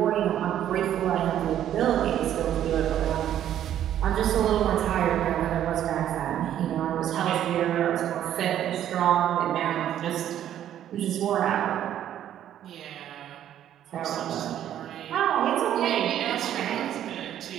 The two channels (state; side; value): quieter; left; 11.0 dB